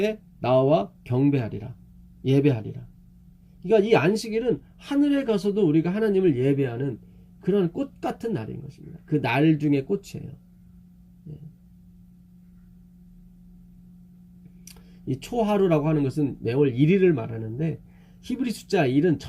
나와 경배하리라. 예배하리라. 그러니까 이 안식일은 하늘에 가서도 우리가 하나님을 예배하는 그런 꽃 같은 날인 것입니다. 그 날 중에 꽃이에요. 이 초하루라고 하는 것은 매월 1일을 말하는데 히브리 숫자 1은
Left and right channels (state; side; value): identical; both; correlation 1.00